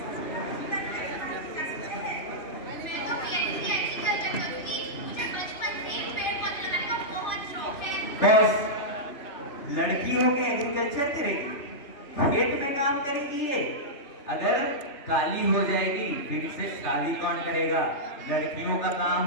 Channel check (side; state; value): right; late; 3.3 ms